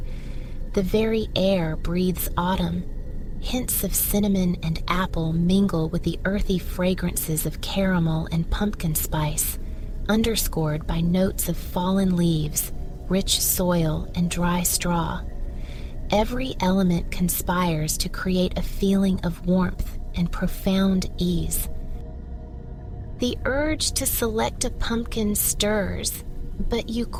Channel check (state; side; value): identical; both; correlation 1.00